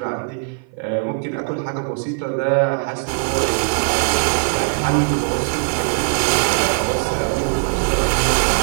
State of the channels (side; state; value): left; silent; 55 dB below the other